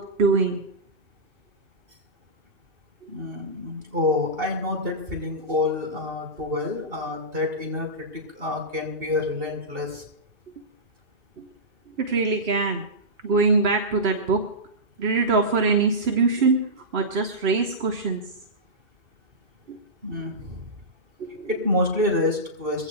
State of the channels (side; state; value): left; late; 2.7 ms